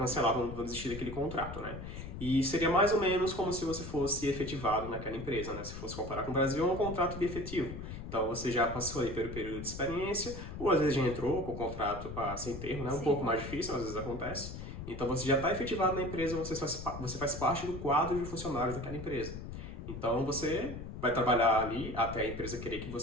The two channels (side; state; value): left; noise; rumble, 9 dB below the sound